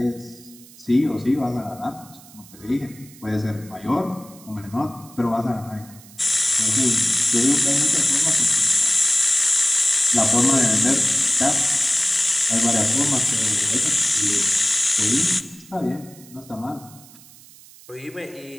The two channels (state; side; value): noise; right; hiss, 22 dB below the sound